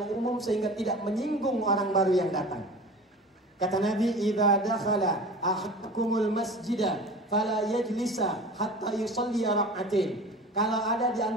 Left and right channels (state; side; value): normal; both; correlation 0.37